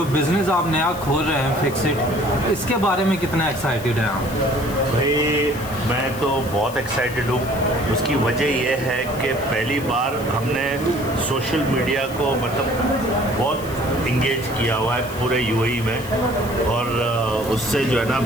बिज़नेस आप नया खोल रहे हैं फिक्सिट, इसके बारे में कितना एक्साइटेड हैं आप? भाई मैं तो बहुत एक्साइटेड हूँ। उसकी वजह यह है कि पहली बार हमने सोशल मीडिया को मतलब बहुत इंगेज किया हुआ है पूरे यूएई में, और उससे जो है ना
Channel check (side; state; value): left; noise; hiss, 16 dB below the sound